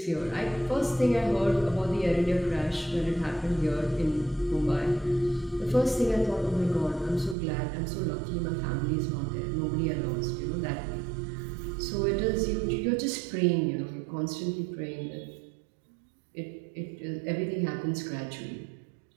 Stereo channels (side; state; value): left; drops out; at 7.4 s